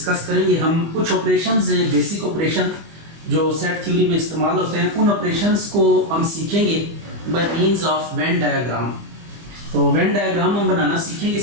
करेंगे। हम कुछ ऑपरेशंस हैं, बेसिक ऑपरेशन जो सेट थ्योरी में इस्तेमाल होते हैं, उन ऑपरेशंस को हम सीखेंगे by means of Venn diagram. तो वेन डायग्राम हम बनाना सीखेंगे।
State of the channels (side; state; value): left; late; 25 ms